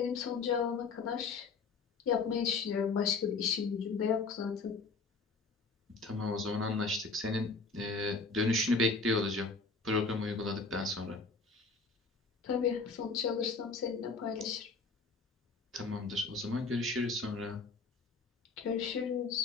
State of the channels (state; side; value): quieter; right; 4.2 dB